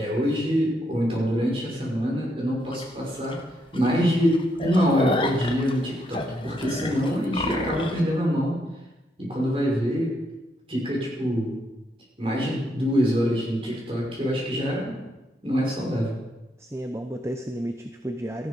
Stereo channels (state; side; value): normal; both; correlation 0.77